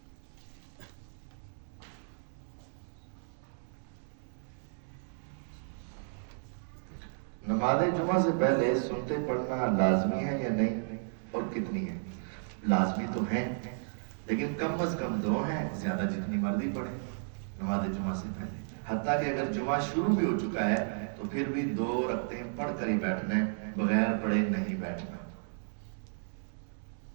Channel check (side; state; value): left; silent; digital silence